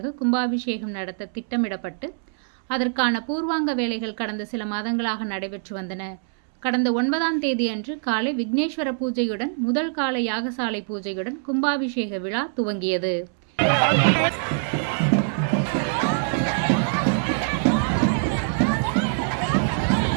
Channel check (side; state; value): left; silent; 63 dB below the other